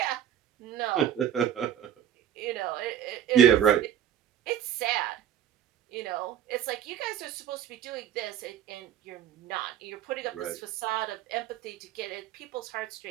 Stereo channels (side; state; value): left; quieter; 10.1 dB